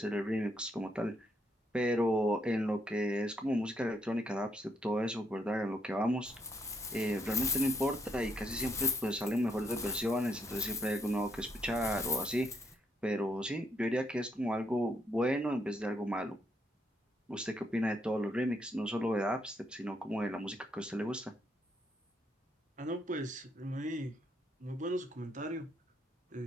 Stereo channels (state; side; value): normal; both; correlation 0.75